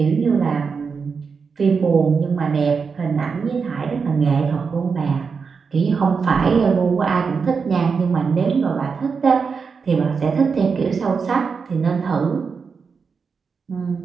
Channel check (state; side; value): quieter; left; 5.4 dB